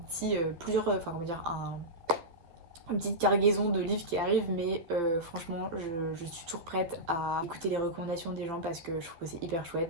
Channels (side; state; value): left; late; 12 ms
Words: petit enfin comment dire une petite cargaison de livres qui arrivent mais franchement je suis toujours prête à écouter les recommandations des gens parce que je trouve que c'est hyper